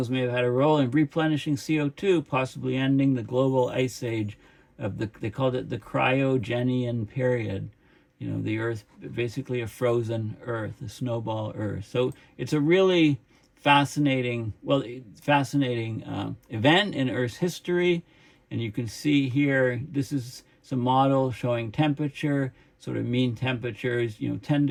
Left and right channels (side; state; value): both; identical; correlation 1.00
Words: may have had a role in replenishing CO2, possibly ending the global ice age of they called it the cryogenian period. The Earth, basically a frozen Earth, a snowball Earth. So it's a really fascinating event in Earth's history. And you can see here, this is some models showing temperature, sort of mean temperatures, 10